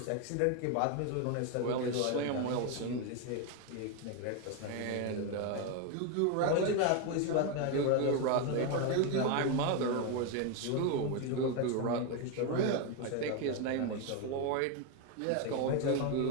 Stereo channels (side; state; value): both; different; correlation 0.02